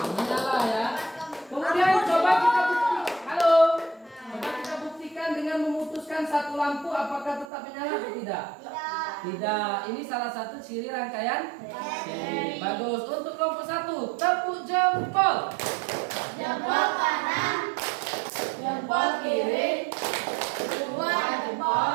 Menyala ya. Kemudian coba kita buktikan. Halo. Coba kita buktikan dengan memutuskan satu lampu apakah tetap menyala atau tidak? Tidak. Ini salah satu ciri rangkaian seri. Bagus. Untuk kelompok 1, tepuk jempol. Jempol kanan, Jempol kiri. dua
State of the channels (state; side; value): drops out; left; at 7.5 s